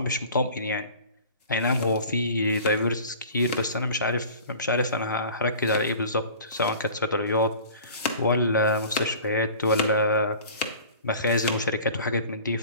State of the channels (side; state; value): both; inverted; correlation -0.43